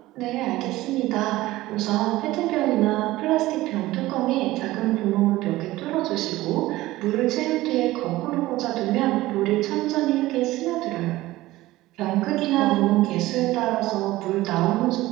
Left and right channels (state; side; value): quieter; left; 17.4 dB